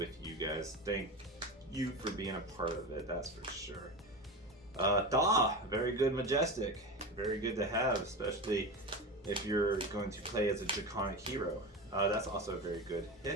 you guys. Thank you for being a part of it, that's for sure. Very good Majestic. Very good to have, especially if you're going to play as a Draconic hero. That's also a very good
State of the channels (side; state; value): both; normal; correlation 0.24